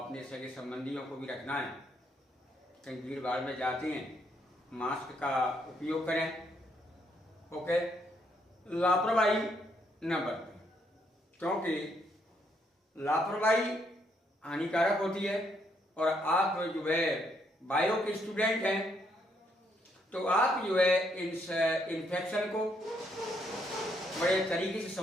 अपने सगे संबंधियों को भी रखना है। कहीं भीड़ भाड़ में जाते हैं, मास्क का उपयोग करें। ओके, लापरवाही न बरतें, क्योंकि लापरवाही हानिकारक होती है। और आप जो है बायो के स्टूडेंट हैं, तो आप जो है इस इन्फेक्शन को बड़े तरीके से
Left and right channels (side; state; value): both; normal; correlation 0.73